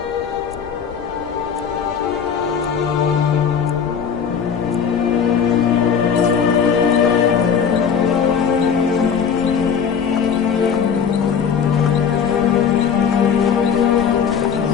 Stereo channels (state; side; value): quieter; right; 7.0 dB